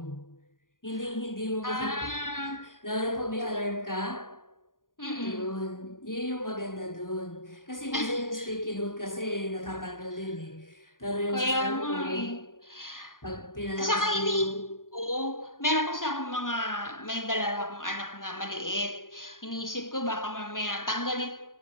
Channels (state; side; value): late; right; 0.90 ms